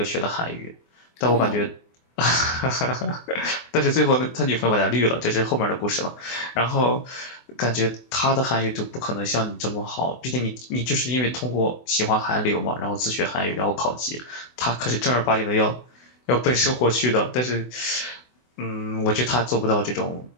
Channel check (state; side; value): late; right; 24 ms